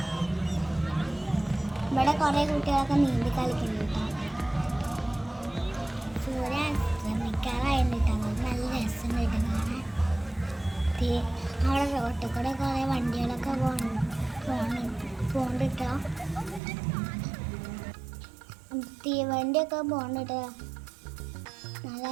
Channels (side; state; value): left; drops out; at 16.6 s